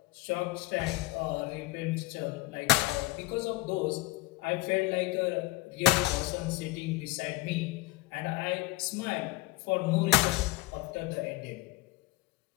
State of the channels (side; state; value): right; quieter; 19.1 dB